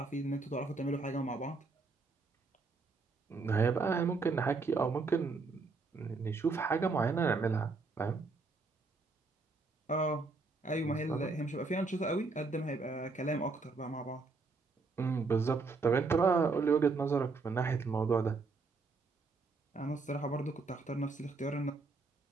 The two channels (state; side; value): quieter; left; 4.0 dB